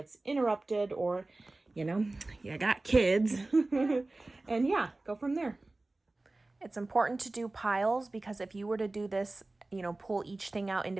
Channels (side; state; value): left; quieter; 3.0 dB